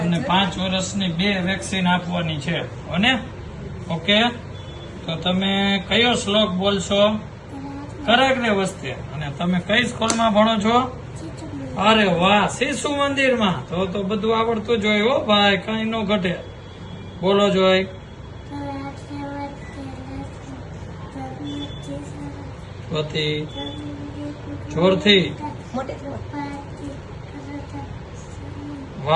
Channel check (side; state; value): both; identical; correlation 1.00